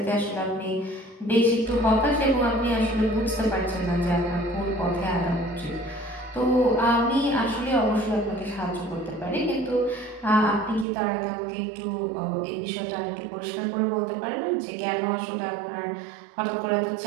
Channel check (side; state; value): left; drops out; at 10.9 s